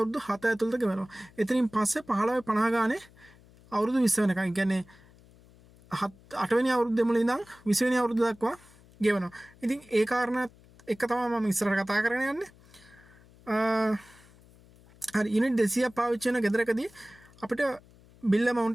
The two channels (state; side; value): noise; left; hum, 26 dB below the sound